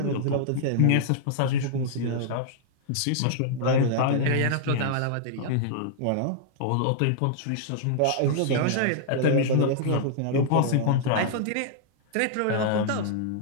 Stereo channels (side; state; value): both; different; correlation -0.01